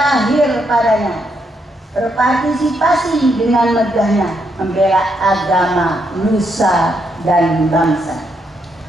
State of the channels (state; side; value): normal; both; correlation 0.78